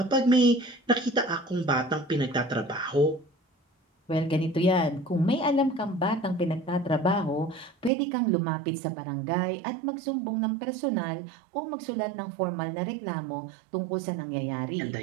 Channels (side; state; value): left; drops out; at 7.9 s